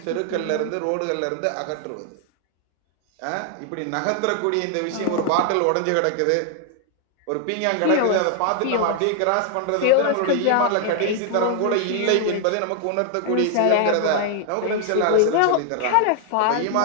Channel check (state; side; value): different; both; correlation 0.00